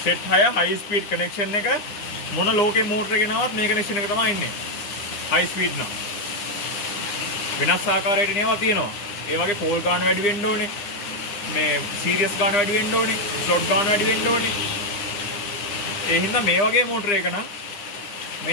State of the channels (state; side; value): late; right; 9.9 ms